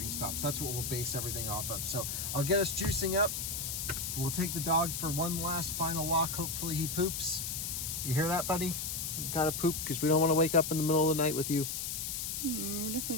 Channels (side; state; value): left; noise; hiss, 3 dB below the sound